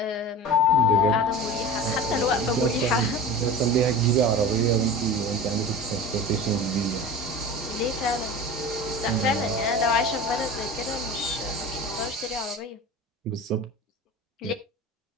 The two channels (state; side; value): normal; both; correlation 0.33